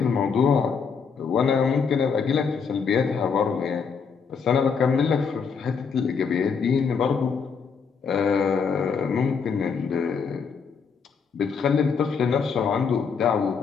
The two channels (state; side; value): quieter; right; 5.9 dB